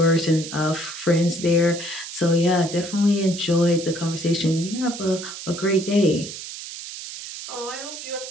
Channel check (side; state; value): right; noise; hiss, 10 dB below the sound